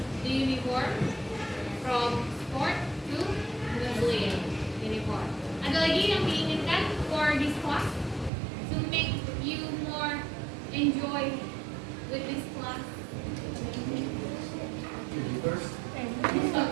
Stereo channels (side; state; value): left; drops out; at 8.3 s